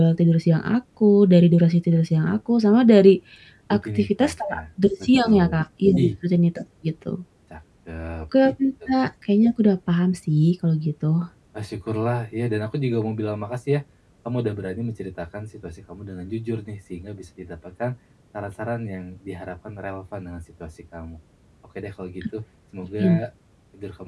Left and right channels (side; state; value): both; identical; correlation 1.00